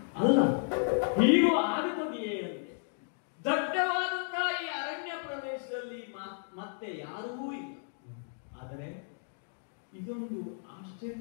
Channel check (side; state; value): right; silent; 56 dB below the other